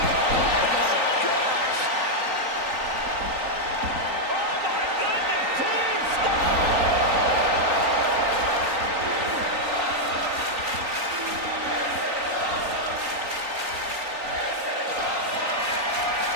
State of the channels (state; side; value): late; left; 3.9 ms